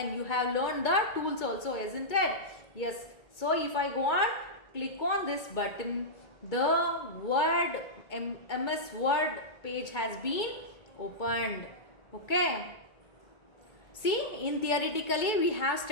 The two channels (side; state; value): right; late; 2.2 ms